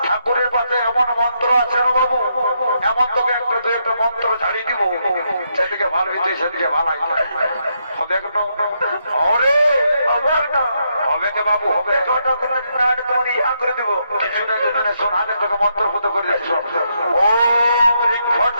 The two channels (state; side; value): inverted; both; correlation -0.79